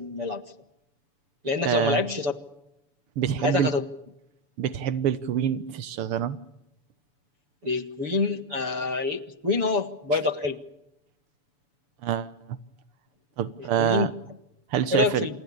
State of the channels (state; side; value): late; left; 7.0 ms